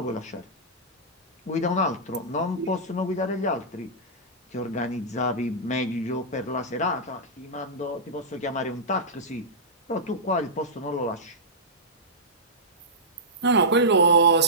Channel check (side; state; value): both; normal; correlation -0.14